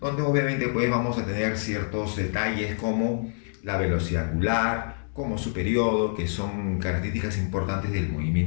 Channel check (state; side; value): silent; right; 61 dB below the other